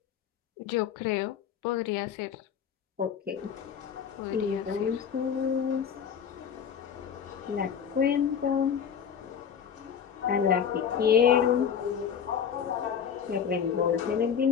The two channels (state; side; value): quieter; right; 7.8 dB